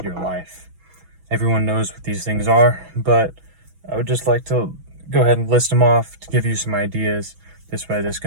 your life. Everyone knows what these things are, but I would just like to go ahead and list them off to give you some ideas. This way this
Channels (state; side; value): late; left; 6.1 ms